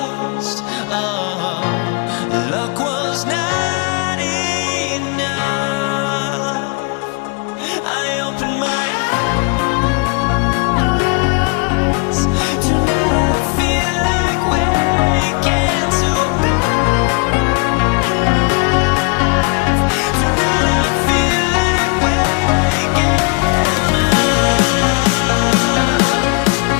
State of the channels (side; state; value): right; quieter; 35.1 dB